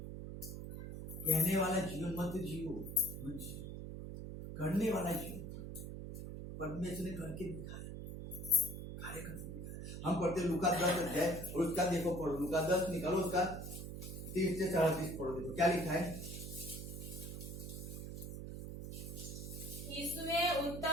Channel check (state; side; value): noise; right; hum, 7 dB below the sound